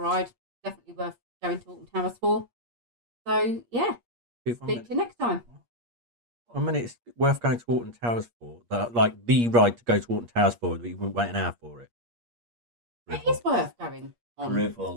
Definitely worth going to Alton Towers for. So, yeah. Speak to you next time. I mean, it's worth going to Alton Towers for. Like the ride to go to Alton Towers for, but you wouldn't wait an hour for it. It is worth going on.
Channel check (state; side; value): late; left; 8.5 ms